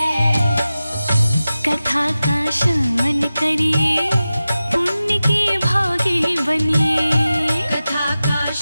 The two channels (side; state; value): both; inverted; correlation -0.94